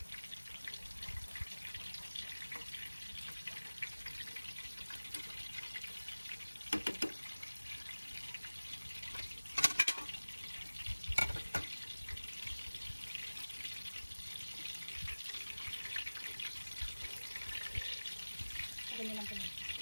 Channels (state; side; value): inverted; both; correlation -1.00